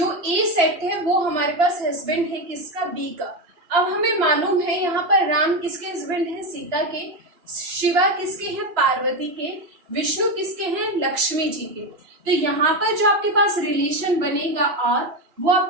ए सेट है वो हमारे पास हस्बैंड है किसका, बी का। अब हमें मालूम है यहाँ पर राम किसके हस्बैंड है, सीता के। शिवा किसके हैं, पार्वती के। विष्णु किसके हैं, लक्ष्मी जी के। तो यहाँ पर जो आपके पास रिलेशन बनेगा और वो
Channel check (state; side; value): late; left; 3.0 ms